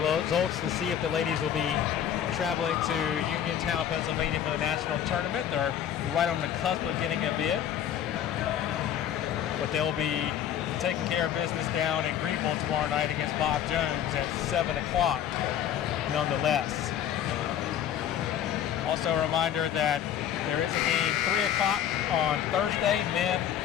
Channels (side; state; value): right; quieter; 10.0 dB